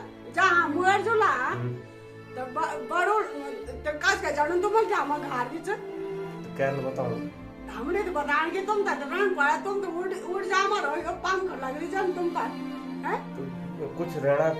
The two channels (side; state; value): both; identical; correlation 1.00